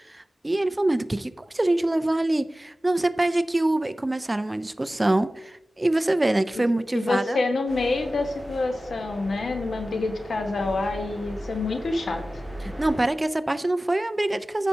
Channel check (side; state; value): both; normal; correlation 0.95